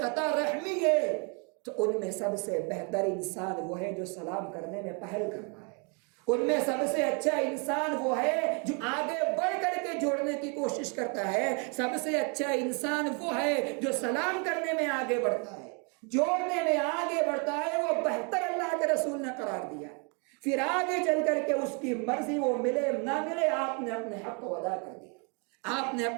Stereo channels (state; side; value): quieter; left; 35.5 dB